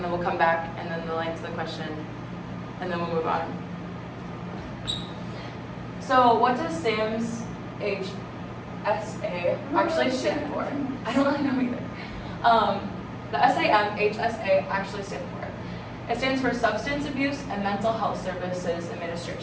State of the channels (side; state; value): both; identical; correlation 1.00